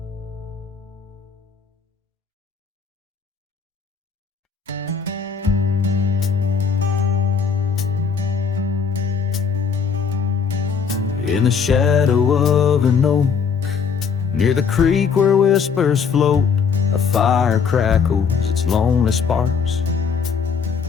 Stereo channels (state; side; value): quieter; right; 6.2 dB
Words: in the shadow of an oak, near the creek where whispers float. A fire crackles its lonely sparks,